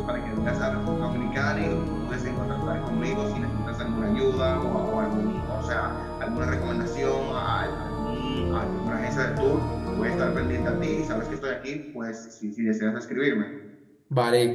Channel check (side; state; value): both; identical; correlation 1.00